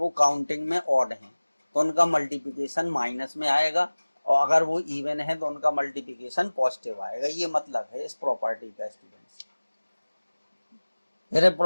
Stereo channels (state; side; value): inverted; both; correlation -1.00